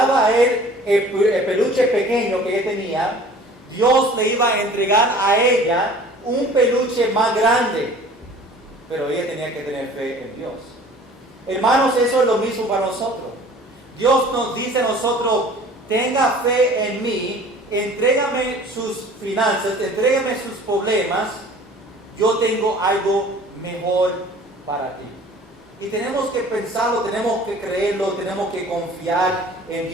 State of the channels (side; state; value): both; normal; correlation 0.47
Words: a Él el peluche pequeño que ella tenía, Dios le iba a entregar a ella un peluche más grande. Pero ella tenía que tener fe en Dios. Hermanos, eso es lo mismo para nosotros. Dios nos dice a nosotros, tenga fe en mí, entrégame sus finanzas, entrégame sus problemas, yo tengo algo mejor para ti. Y tenemos que pensarlo, tenemos que creerlo, tenemos que confiar en